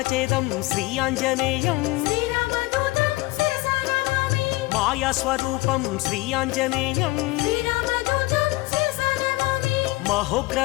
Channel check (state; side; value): quieter; right; 21.4 dB